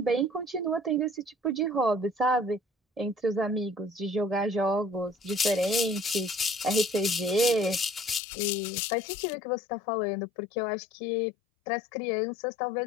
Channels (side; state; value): right; drops out; at 8.2 s